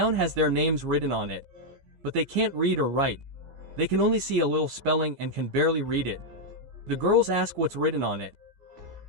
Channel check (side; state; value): left; late; 15 ms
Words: has their names written on it. But they can't read or write. They can only see a little spelling and can barely read it. The girls ask what's written on it.